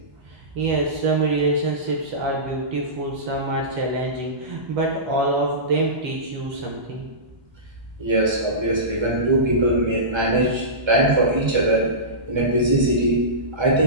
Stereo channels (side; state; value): left; late; 1.3 ms